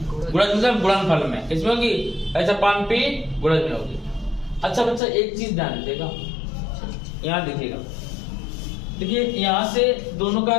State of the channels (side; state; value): right; drops out; at 5.0 s